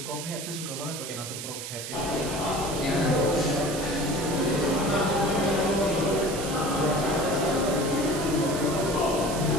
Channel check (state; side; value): noise; right; hiss, 8 dB below the sound